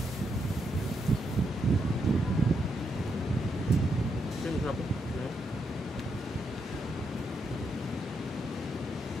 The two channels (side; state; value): both; normal; correlation 0.80